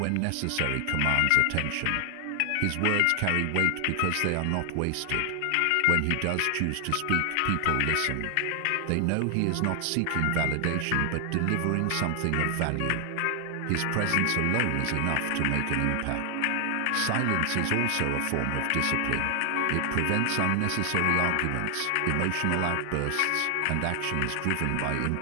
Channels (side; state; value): both; different; correlation 0.00